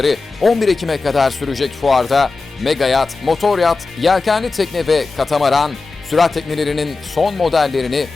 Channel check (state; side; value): quieter; right; 3.9 dB